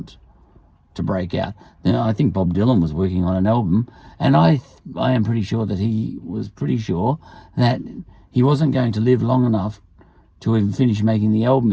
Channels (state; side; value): identical; both; correlation 1.00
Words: to break out. Now, I think Bob Dylan was working on an album, and I am pretty sure that he was pretty sure that he wasn't going to live long enough to even finish making the album